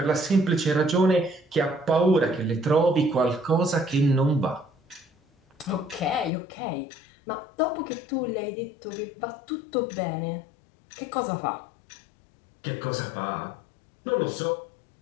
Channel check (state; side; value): drops out; right; at 6.3 s